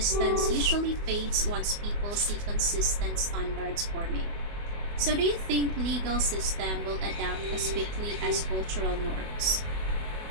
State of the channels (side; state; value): left; late; 24 ms